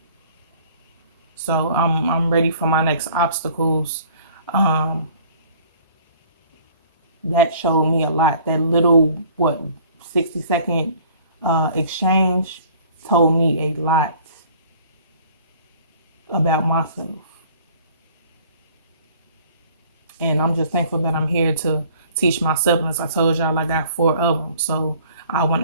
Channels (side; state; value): both; inverted; correlation -0.53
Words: So I'm ready for my next obstacles. That showed me a lot. That little 60-second exchange told me a lot about myself. And I'm just thankful that I'm here to teach my siblings. I told y'all I got 4 of them. So I